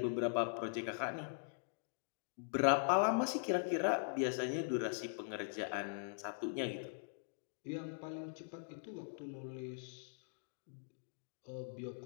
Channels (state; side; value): silent; right; digital silence